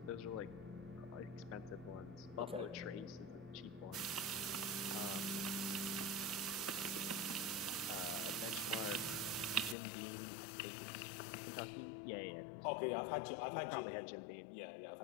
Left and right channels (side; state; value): right; drops out; at 9.8 s